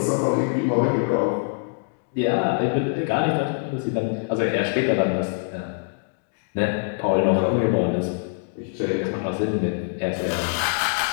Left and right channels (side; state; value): right; silent; digital silence